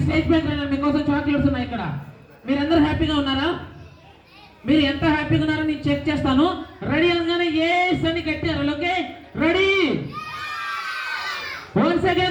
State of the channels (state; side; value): identical; both; correlation 1.00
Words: స్టేజ్ పైకి రండి, మీకోసం చాక్లెట్స్ ఉన్నాయి ఇక్కడ. మీరందరూ హ్యాపీగా ఉన్నారా? మీరు ఎంత హ్యాపీగా ఉన్నారో నేను చెక్ చేస్తాను. రెడీ అనగానే ఎస్ అని కట్టారు. Okay ready, once